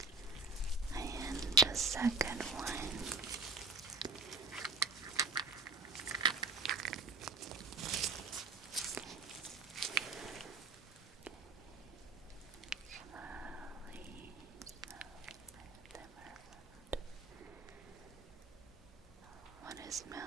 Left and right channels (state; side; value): quieter; left; 4.0 dB